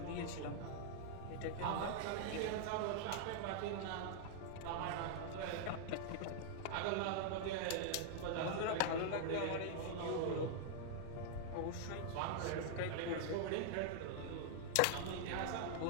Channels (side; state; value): both; different; correlation -0.01